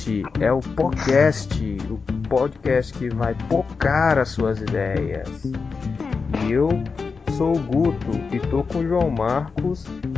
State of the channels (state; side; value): quieter; right; 4.9 dB